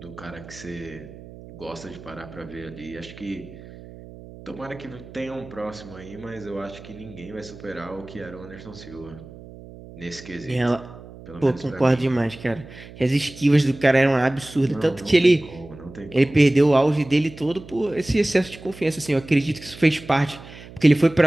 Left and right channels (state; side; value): noise; right; hum, 17 dB below the sound